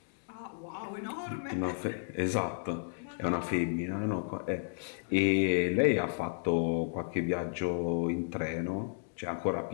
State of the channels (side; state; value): right; silent; digital silence